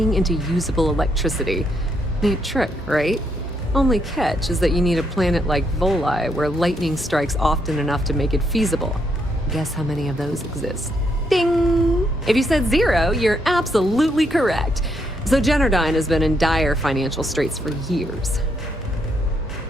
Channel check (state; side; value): normal; both; correlation 0.76